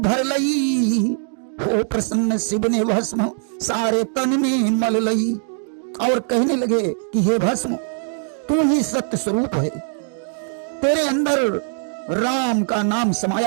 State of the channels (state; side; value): silent; left; 65 dB below the other